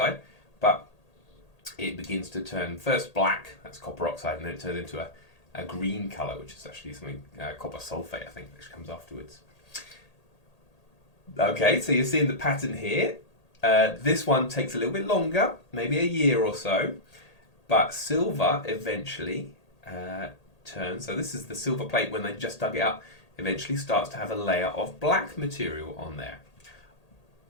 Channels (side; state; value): right; late; 1.8 ms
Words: but it begins to turn first black, that's copper oxide, and then it turns into a green colour, which is actually something, copper sulfate, I think, which comes afterwards. Okay, so you're seeing the pattern here. This one takes a little bit longer, maybe a year or so, but silver eventually turns. So this is the silver plate when they just dug it up, eventually starts to have a layer of black material on there.